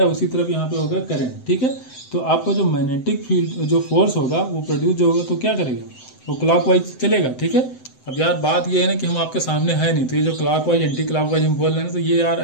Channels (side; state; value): right; late; 7.8 ms